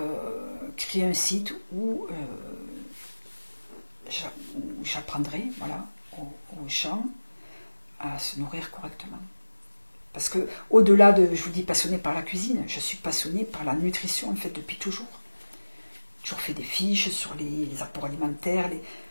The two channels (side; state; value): both; inverted; correlation -1.00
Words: créer un site où j'apprendrai voilà, aux gens à se nourrir correctement. Parce que au-delà de, je vous dis, passionné par la cuisine, je suis passionnée par la nutrition en fait depuis toujours. J'ai toujours fait des fiches sur les apports alimentaires.